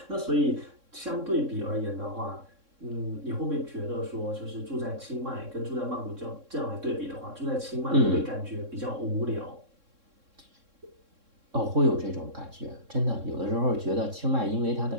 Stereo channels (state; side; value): late; left; 3.6 ms